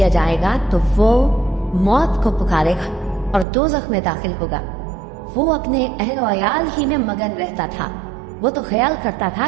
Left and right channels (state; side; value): drops out; left; at 3.5 s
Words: जाएगा तो वो मौत को पुकारेगा और दोज़ख में दाखिल होगा। वो अपने अहल वयाल ही में मगन रहता था। वो तो ख्याल करता था